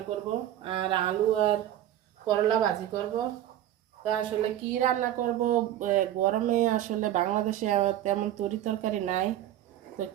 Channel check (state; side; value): quieter; left; 12.4 dB